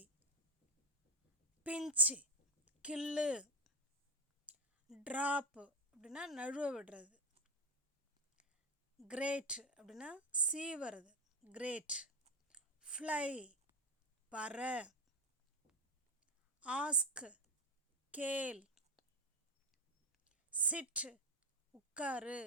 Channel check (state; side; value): normal; both; correlation 0.11